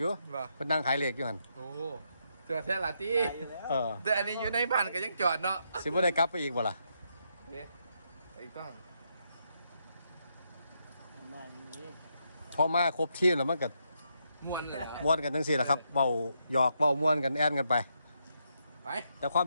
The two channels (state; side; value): inverted; both; correlation -0.79